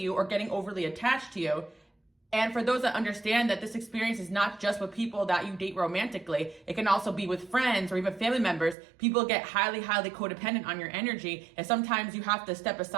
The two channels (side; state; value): left; drops out; at 8.8 s